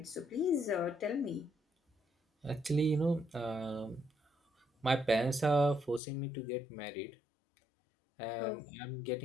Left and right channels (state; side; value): drops out; right; at 6.0 s